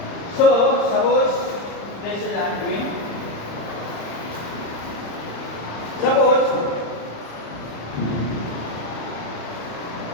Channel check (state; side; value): late; right; 35 ms